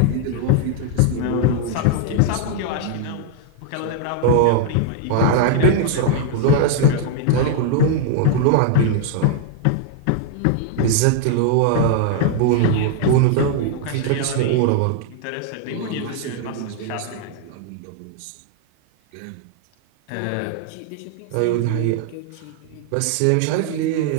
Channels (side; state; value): both; different; correlation 0.00